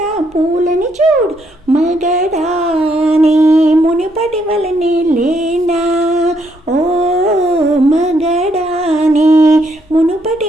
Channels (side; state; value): both; normal; correlation 0.73